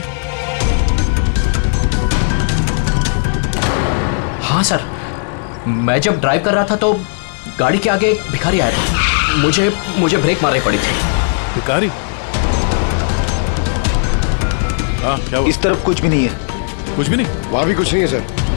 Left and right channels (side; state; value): right; silent; digital silence